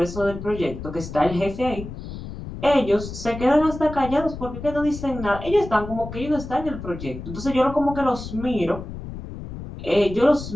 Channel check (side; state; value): left; noise; rumble, 10 dB below the sound